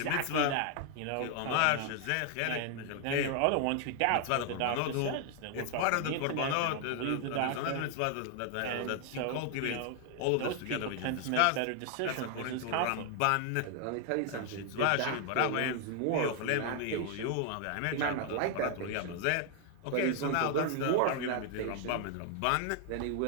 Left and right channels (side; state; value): both; different; correlation 0.00